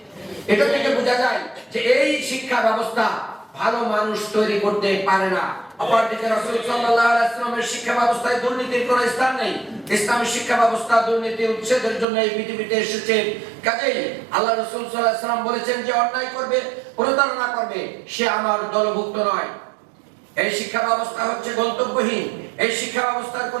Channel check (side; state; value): left; drops out; at 12.1 s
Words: এটা থেকে বোঝা যায় যে এই শিক্ষা ব্যবস্থা ভালো মানুষ তৈরি করতে পারে না। অপরদিকে রাসূল সাল্লাল্লাহু আলাইহি ওয়াসাল্লামের শিক্ষা ব্যবস্থায় দুর্নীতির কোনো স্থান নেই। ইসলামী শিক্ষা ব্যবস্থা দুর্নীতি উচ্ছেদের জন্য এই পৃথিবীতে এসেছে। কাজেই আল্লাহ রাসূল সাল্লাল্লাহু আলাইহি ওয়াসাল্লাম বলেছেন যে অন্যায় করবে, প্রতারণা করবে, সে আমার দলভুক্ত নয়। এই শিক্ষা ব্যবস্থা হচ্ছে গন্তব্যহীন। এই শিক্ষা ব্যবস্থার